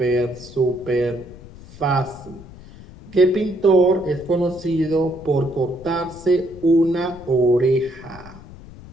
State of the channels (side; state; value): left; noise; rumble, 18 dB below the sound